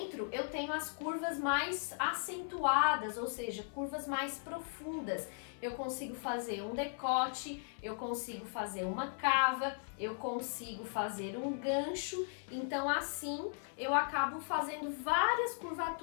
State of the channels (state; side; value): silent; right; 53 dB below the other